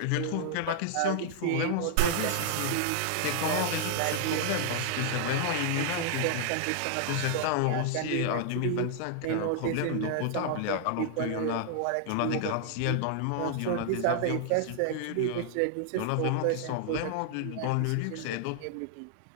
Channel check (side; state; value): both; different; correlation -0.01